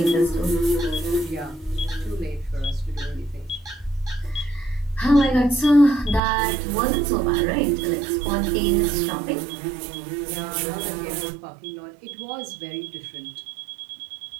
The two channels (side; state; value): left; drops out; at 6.2 s